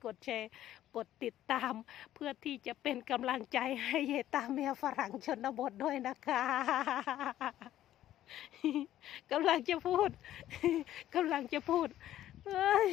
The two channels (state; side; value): quieter; right; 12.8 dB